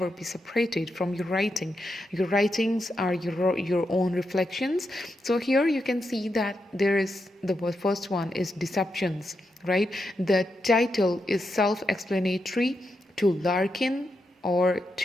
be separated from your writing. Your writings are your own reflections. So here you can see that there is the first one is Deceptions, right? The title is self-explanatory to Larkin, or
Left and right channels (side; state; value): both; normal; correlation 0.85